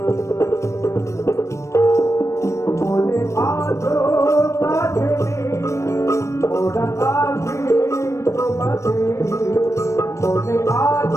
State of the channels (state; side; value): late; right; 0.14 ms